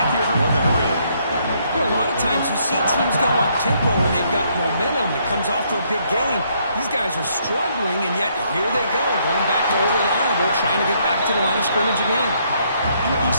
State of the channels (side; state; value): both; inverted; correlation -0.70